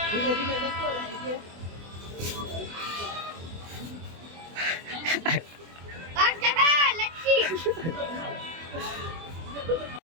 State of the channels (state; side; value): late; left; 24 ms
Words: ધીમે ધીમે જતો રહે છે.